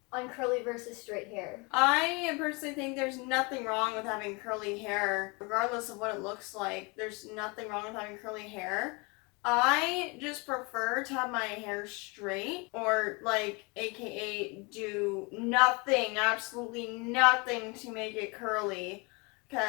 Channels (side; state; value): right; quieter; 29.1 dB